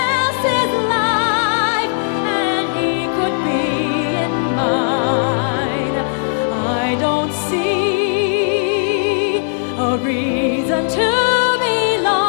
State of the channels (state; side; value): silent; right; digital silence